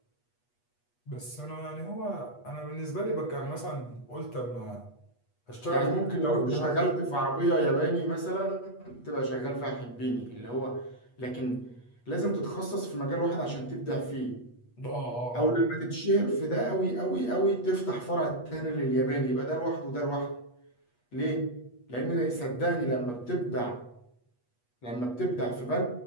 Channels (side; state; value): right; late; 8.3 ms